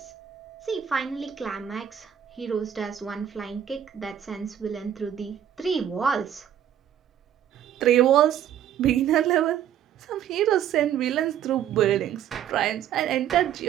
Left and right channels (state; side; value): quieter; left; 10.0 dB